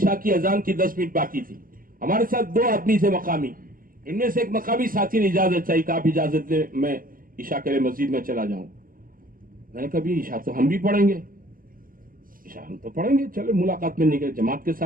की अजान की 10 मिनट बाकी थी। हमारे साथ 2 आदमी थे मकामी, इनमें से एक मकामी साथी ने इजाजत चाहिए, आप इजाजत दे, मैं ईशा के लिए मस्जिद में चला जाऊं। मैंने कहा भी ईशा तो हम भी पढ़ेंगे, ईशा हम तो पढ़ेंगे, चले मुलाकात में निकले, जमात के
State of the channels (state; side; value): late; left; 0.41 ms